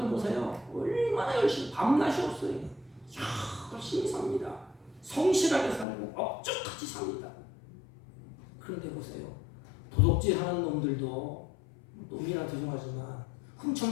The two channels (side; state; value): right; drops out; at 5.9 s